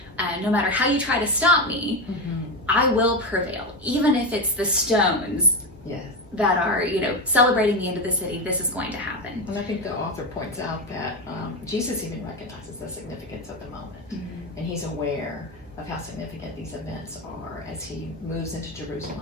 no matter how you try to stop me, I will prevail. Even if it's the stones that are, celebrating the end of the city, this is going to happen. And I think the author points out that Jesus even recognizes the significance of the moment. And he's aware of how significant these events are as he moves into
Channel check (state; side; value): normal; both; correlation 0.15